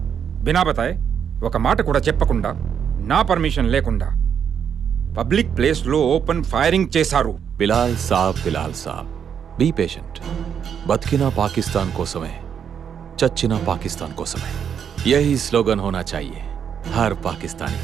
बिना बताए ఒక మాట కూడా చెప్పకుండా నా పర్మిషన్ లేకుండా పబ్లిక్ ప్లేస్ లో ఓపెన్ ఫైరింగ్ చేశారు. బిలాల్ సాబ్ బీ పేషెంట్. బతికినా పాకిస్తాన్ కోసమే, చచ్చినా పాకిస్తాన్ కోసమే. యహీ స్లోగన్ హోనా చాహియే హర్ పాకిస్తానీ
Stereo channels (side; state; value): left; quieter; 7.9 dB